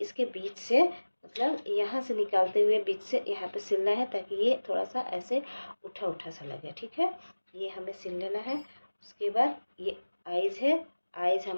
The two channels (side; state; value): both; inverted; correlation -1.00